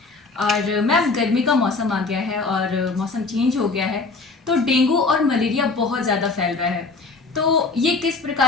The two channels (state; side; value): quieter; right; 3.9 dB